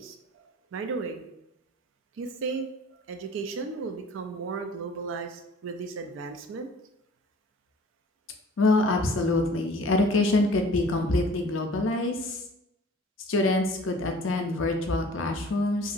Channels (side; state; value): both; normal; correlation 0.49